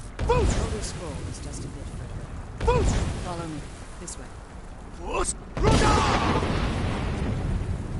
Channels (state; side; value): identical; both; correlation 1.00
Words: The Elder Scroll is just a bit further. Follow me. This way.